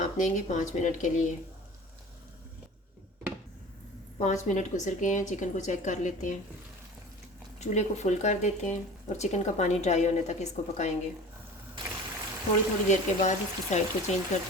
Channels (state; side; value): normal; both; correlation 0.39